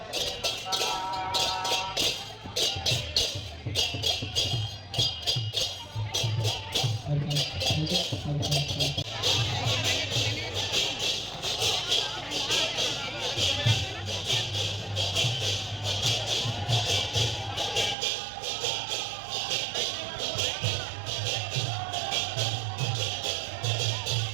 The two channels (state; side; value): drops out; left; at 17.9 s